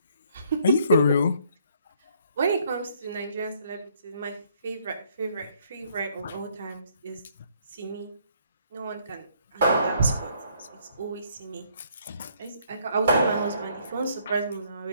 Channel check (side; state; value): both; inverted; correlation -0.66